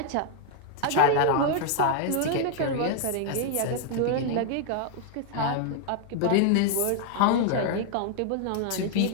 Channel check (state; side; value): different; both; correlation 0.00